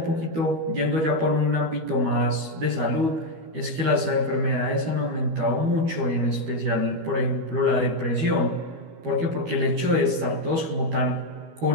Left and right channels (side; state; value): left; late; 12 ms